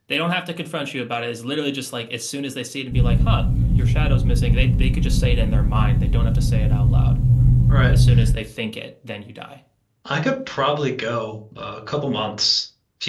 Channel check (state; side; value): identical; both; correlation 1.00